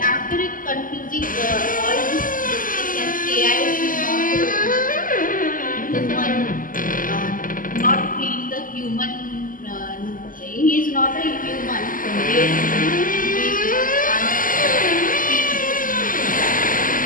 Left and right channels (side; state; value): right; late; 0.40 ms